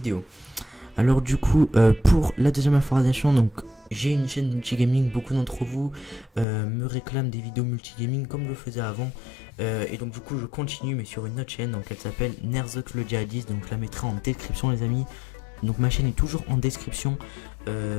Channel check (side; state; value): right; drops out; at 6.5 s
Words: Alors du coup pour la deuxième information, donc j'ai une chaîne multigaming. Beaucoup d'entre vous me réclament des vidéos multigaming comme je le faisais avant, et donc du coup je continue mais sur une autre chaîne, donc elle s'appelle Nerzok le Djihadiste, donc je la mettrai en description les amis. Donc ma chaîne est toujours en description